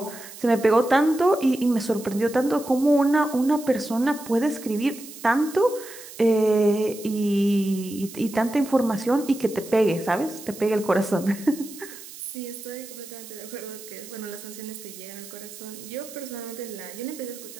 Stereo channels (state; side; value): noise; right; hiss, 15 dB below the sound